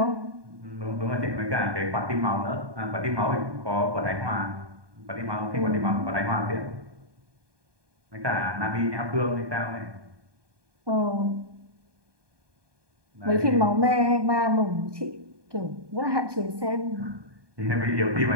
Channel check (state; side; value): late; left; 1.2 ms